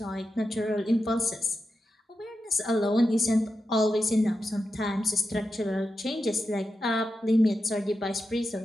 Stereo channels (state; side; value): normal; both; correlation 0.89